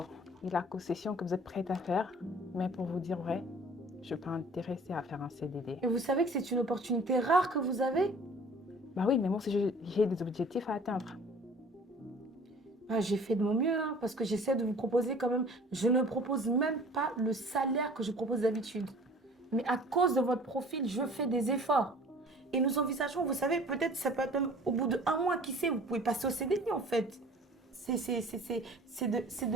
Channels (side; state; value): both; normal; correlation 0.48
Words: et la concession que vous êtes prête à faire. Mais pour vous dire vrai, je ne suis pas intéressée à faire un CDD. Et vous savez que c'est une opportunité rare que vous avez? Bah oui, mais moi aussi j'ai des objectifs à atteindre. J'ai fait de mon mieux, hein, parce que j'essaie de vous proposer quand même. Je ne propose même pas le salaire que je propose d'habitude. Mais à cause de votre profil, je fais des efforts. Et nous envisageons, vous savez, peut-être ça peut être même au bout de 1 mois, qui sait, vous pouvez passer au CDI en fait. C'est